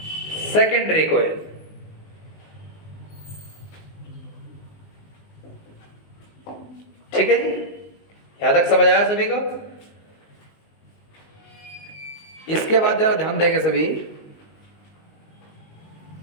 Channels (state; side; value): late; right; 19 ms